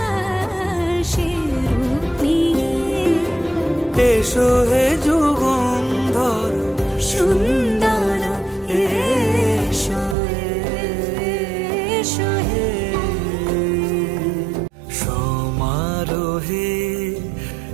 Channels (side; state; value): left; drops out; at 10.2 s